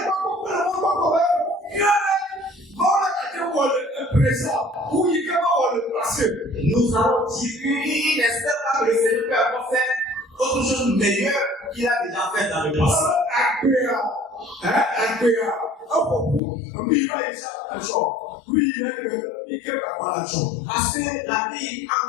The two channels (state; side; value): drops out; right; at 16.4 s